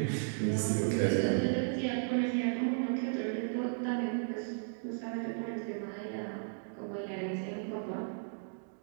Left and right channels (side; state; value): left; silent; digital silence